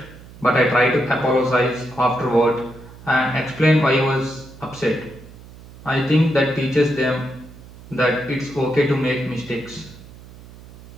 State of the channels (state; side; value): noise; right; hum, 19 dB below the sound